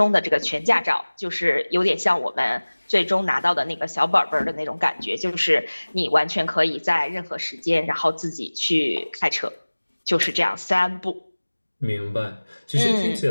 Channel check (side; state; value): both; inverted; correlation -1.00